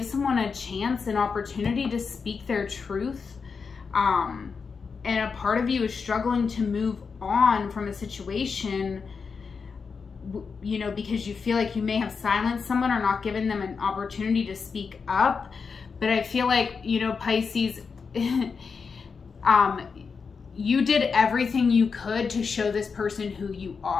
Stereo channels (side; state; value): right; quieter; 5.4 dB